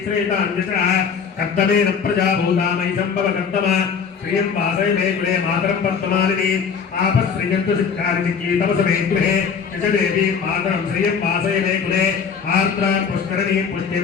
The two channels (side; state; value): right; quieter; 6.3 dB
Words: कर्दमेन प्रजाभूता मयि सम्भव कर्दम श्रियं वासय मे गृहे मातरं पद्ममालिनी आपश्रियन्तु सिद्धानि चिकीतमस मे गृहे यश देवीं मातरं श्रियं वासय मे गृहे आर्द्रां पुष्करणीं पुष्टिं